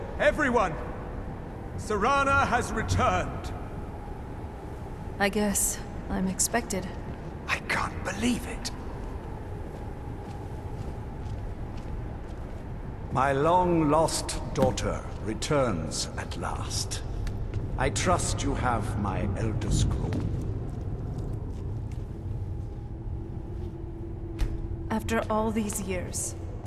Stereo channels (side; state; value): both; identical; correlation 1.00